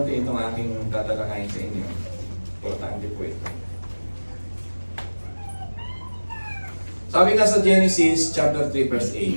itong aking tatalakayin sa inyo. Importante po ito. Sabi nga sa Genesis chapter 3 verse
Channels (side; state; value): both; inverted; correlation -1.00